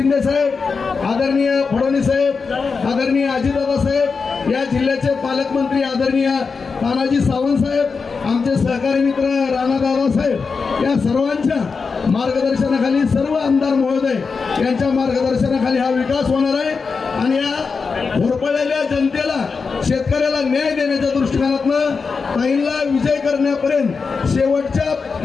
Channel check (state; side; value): quieter; right; 5.0 dB